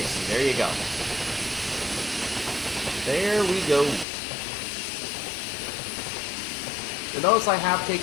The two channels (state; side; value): drops out; right; at 4.0 s